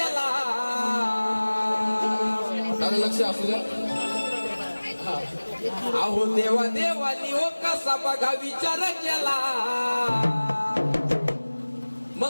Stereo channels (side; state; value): both; inverted; correlation -1.00